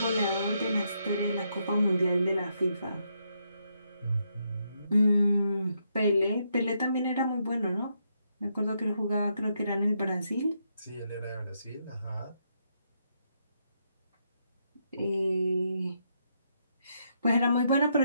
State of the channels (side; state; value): both; inverted; correlation -0.78